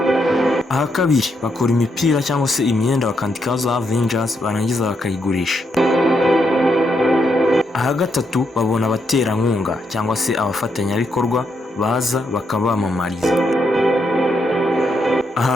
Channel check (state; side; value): normal; both; correlation 0.79